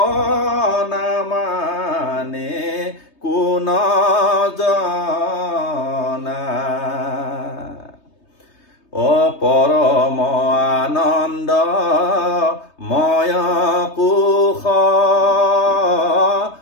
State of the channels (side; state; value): right; late; 3.2 ms